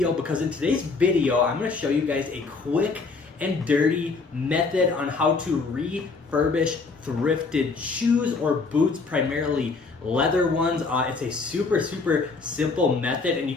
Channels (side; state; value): right; quieter; 4.2 dB